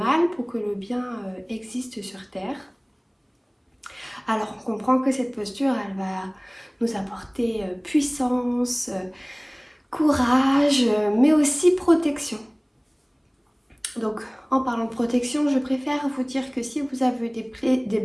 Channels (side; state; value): both; identical; correlation 1.00